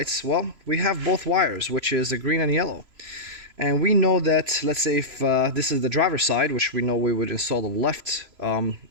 well, we have both wires, which is the green and yellow. And we know that, let's say if this is the driver's side, which we know we would install the left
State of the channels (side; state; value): left; late; 3.0 ms